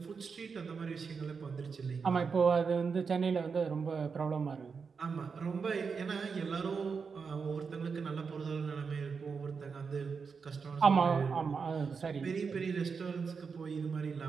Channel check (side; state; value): left; quieter; 5.5 dB